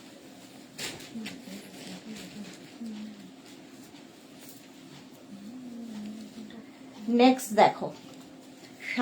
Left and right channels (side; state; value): both; identical; correlation 1.00